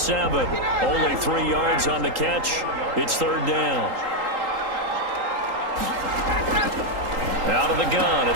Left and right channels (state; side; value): late; left; 3.8 ms